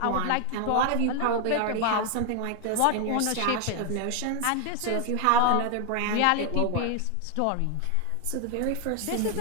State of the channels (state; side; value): different; both; correlation 0.01